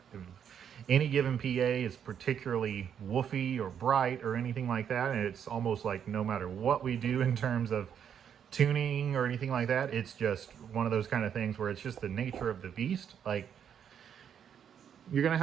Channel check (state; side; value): quieter; left; 8.4 dB